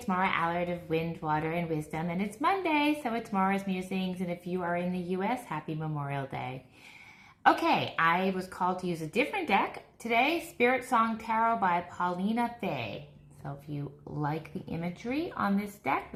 Maura Allard of Wind, Water, and Wisdom, and it's Monday, so it's Maura's Musings, and if you are in the U.S., happy Memorial Day. Okay, I was called to use a different deck today, Spirit Song Tarot by Paulina Fay. So if you like the imagery on this deck,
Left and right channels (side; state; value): both; identical; correlation 1.00